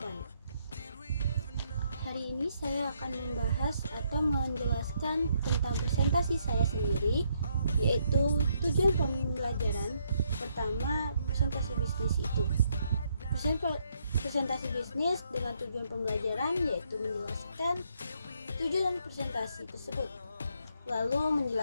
Hari ini saya akan membahas atau menjelaskan tentang presentasi saya sendiri, yaitu tujuan pembelajaran. Pertama, presentasi bisnis itu. Presentasi bisnis dengan tujuan pembelajaran yaitu menjelaskan tujuan presentasi tersebut, lalu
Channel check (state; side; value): inverted; both; correlation -0.73